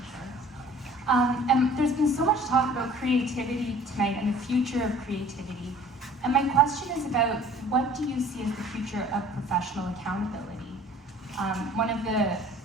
And there's been so much talk about creativity tonight and the future of creativity. And my question is about, what do you see as the future of professional accountability? One of the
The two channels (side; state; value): both; normal; correlation 0.50